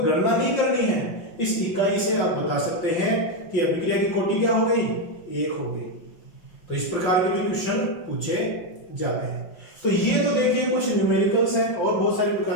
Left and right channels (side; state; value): right; late; 5.7 ms